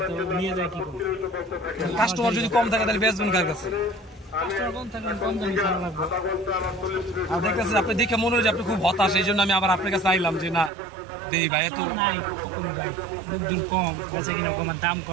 তো নিয়ে যায় কি করব। কাস্টমার যদি কম থাকে তাহলে বেচবেন কার কাছে? কাস্টমার কম থাকলে কম দামে ছাড়া লাগবে। আর দেখতেছেন আপনি দেখে মনে হয় যে আপনি খুব হতাশ, এই জন্য আমি আবার আপনার কাছে আইলাম যে না দেই ভাই এত নাই ভাই দুধ কম বলছে কিনা কম দাম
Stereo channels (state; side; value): drops out; left; at 10.7 s